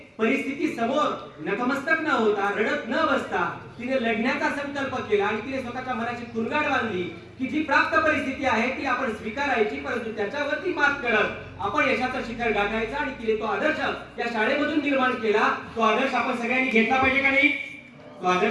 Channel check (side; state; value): both; identical; correlation 1.00